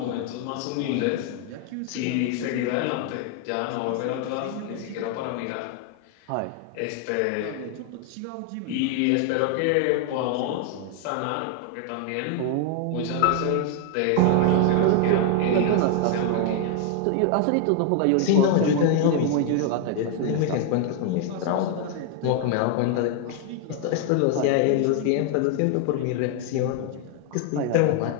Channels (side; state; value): both; different; correlation 0.00